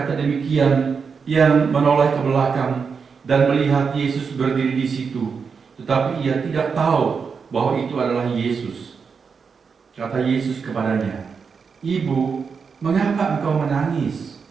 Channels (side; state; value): left; quieter; 5.7 dB